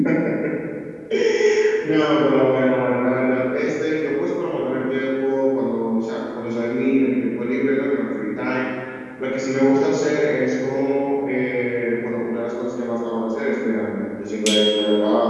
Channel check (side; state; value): both; identical; correlation 1.00